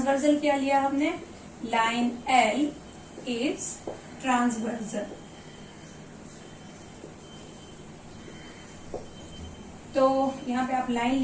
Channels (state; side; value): identical; both; correlation 1.00